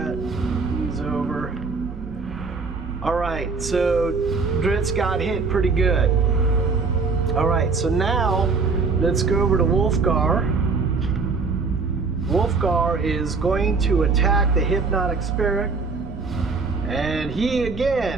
He's over. Alright, so Drizzt got hit pretty good. Alright, so now let's go over to Wolfgar. Wolfgar is going to attack the hypnotic spirit. And he's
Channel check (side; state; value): left; quieter; 4.5 dB